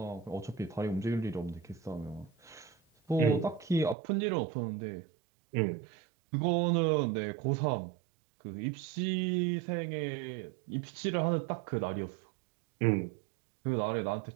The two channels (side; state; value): left; drops out; at 4.0 s